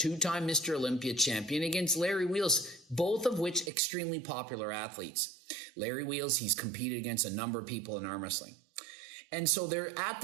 Mr. Olympia champion against Larry Wheels, both of which extremely popular athletes. Larry Wheels, he's competed against a number of people in arm wrestling. And so they're at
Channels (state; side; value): drops out; left; at 3.7 s